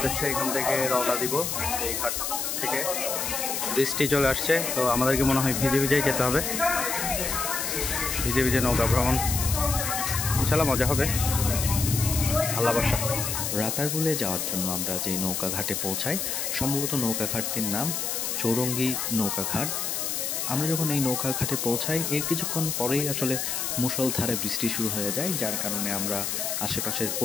এখান থেকে রওনা দিব। এই ঘাট থেকে বৃষ্টি চলে আসছে, তো আমাদেরকে মনে হয় ভিজে ভিজেই যেতে হবে। ভিজে ভিজে নৌকা ভ্রমণ ইনশাল্লাহ মজা হবে, আল্লাহ ভরসা। রাতারগুলে যাওয়ার জন্য আমরা যে নৌকা ঘাটে পৌঁছাই, সম্ভবত নৌকা ঘাটটির নাম চৌরঙ্গি নৌকা ঘাট। আমরা যখন এই নৌকা ঘাটে পৌঁছাই, এর কিছুক্ষণ পরেই আসলে মুষলধারে বৃষ্টি শুরু হয়ে যায়, যার কারণে আমরা আশেপাশের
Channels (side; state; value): left; noise; hiss, 2 dB below the sound